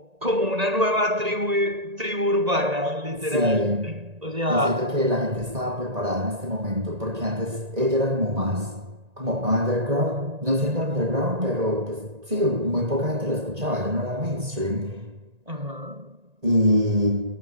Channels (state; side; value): late; left; 1.9 ms